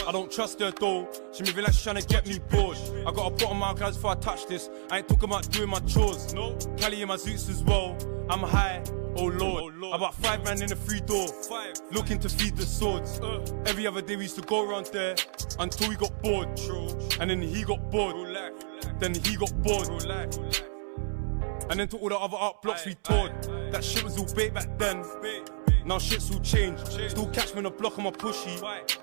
I don't trust her though. She moving like she's trying to get me bored. I got a bottom out guys before I touch this. I ain't talking about doing my chores. No. Cali in my zoots as well. I'm high. Oh Lord. About 5 man in the free door. Looking to feed the swords. Every other day we used to go around there until we got bored. And then he got bored. Then he got bored. And then to all the other art blocks we toured. That shit was all bait back then. Now shit's all changed. Still catch me on the block on my pushy.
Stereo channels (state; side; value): silent; left; 58 dB below the other